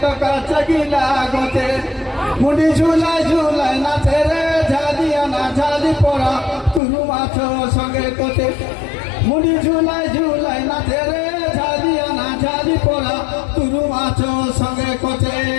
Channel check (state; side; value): drops out; right; at 6.8 s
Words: কাছে গিলা গছে মুড়ি ঝুলাই ঝুলাই নাচে রে ঝালিয়া না ঝালি পড়া তুরু মাছ সঙ্গে কোতে মুড়ি ঝুলাই ঝুলাই নাচে রে ঝালিয়া না ঝালি পড়া তুরু মাছ সঙ্গে কোতে।